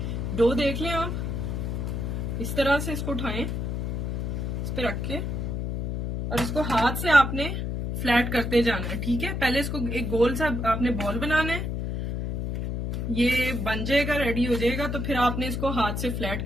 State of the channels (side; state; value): left; noise; hum, 2 dB below the sound